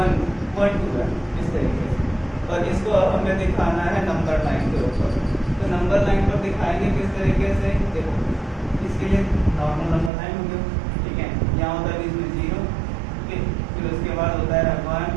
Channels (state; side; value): drops out; left; at 10.1 s